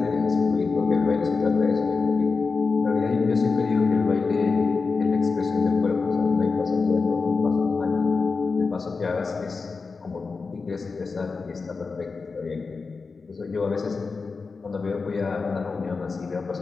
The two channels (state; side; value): quieter; right; 4.5 dB